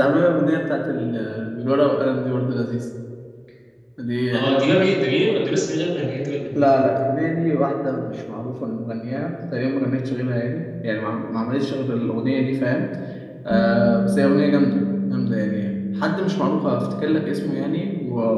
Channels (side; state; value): both; identical; correlation 1.00